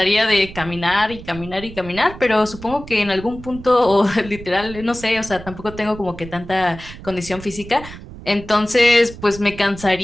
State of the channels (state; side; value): noise; right; rumble, 14 dB below the sound